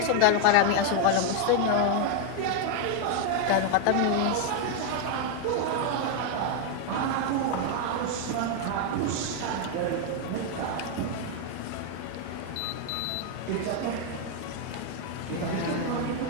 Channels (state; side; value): different; both; correlation 0.00